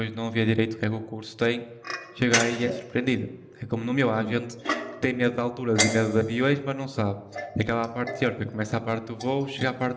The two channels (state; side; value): identical; both; correlation 1.00